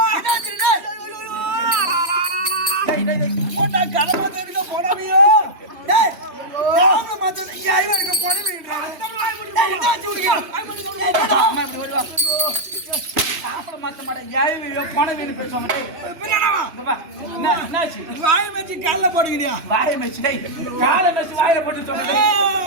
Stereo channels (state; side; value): late; left; 3.1 ms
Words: போட்டா கடமை தெரியுங்க போடாமையோ. டேய் யாரும் மாத்த இங்க ஐவா இருக்க போடுவீங்கறானே. டேய் என்னாச்சு உனக்கு? அம்மா இப்படி ஓடி வா. சாப்பிட மாட்ட மாட்டேன். ஏய்யோ பணம் வேணும் பேசுவாங்க. டேய் பின்னாடா இங்க வா. என்னாச்சு? வாய் வச்சு கால்ல போடுங்கடியா. வாயை மெச்சு. டேய் காலை மெச்சு வாயில போட்டு சொன்னே.